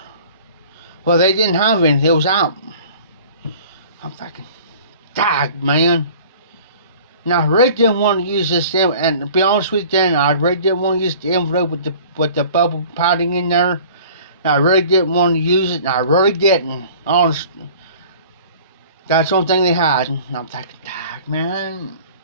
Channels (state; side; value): inverted; both; correlation -0.47